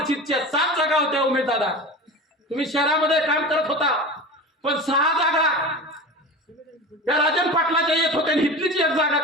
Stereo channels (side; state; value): both; normal; correlation 0.31